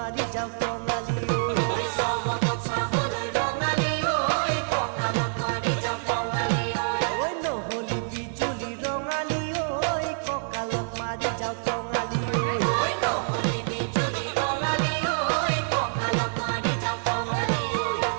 যাওঁ টঙালি ঐ চমকত চাবলৈ ৰঙালী ঐ কঁকালত মাৰি যাওঁ টঙালী ঐ নহলি বিজুলি ৰঙালী ঐ কঁকালত মাৰি যাওঁ টঙালি ঐ ঐ নহলি বিজুলি ৰঙালী ঐ কঁকালত মাৰি যাওঁ টঙালী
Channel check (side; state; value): left; silent; 60 dB below the other